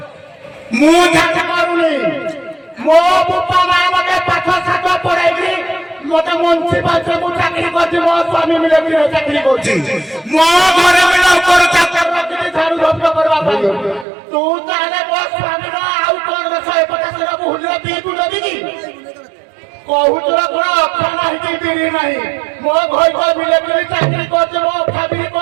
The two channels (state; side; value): drops out; left; at 14.1 s